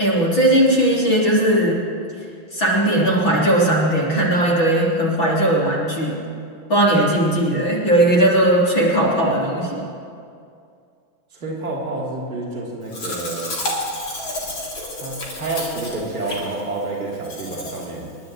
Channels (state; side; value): late; right; 6.1 ms